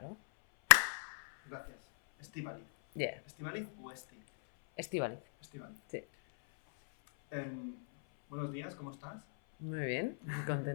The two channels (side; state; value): right; silent; 52 dB below the other